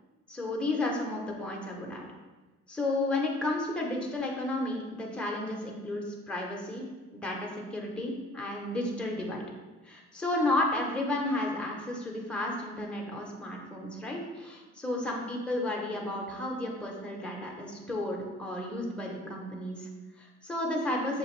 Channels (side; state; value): both; normal; correlation 0.52